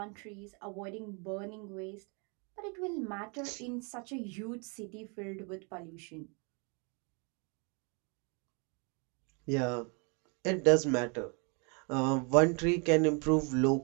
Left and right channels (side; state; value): left; quieter; 34.6 dB